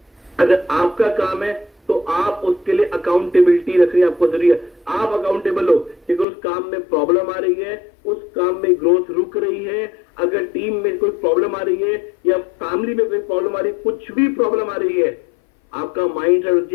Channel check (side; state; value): right; drops out; at 6.2 s